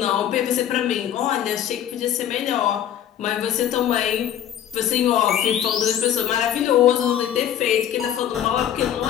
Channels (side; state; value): right; quieter; 10.3 dB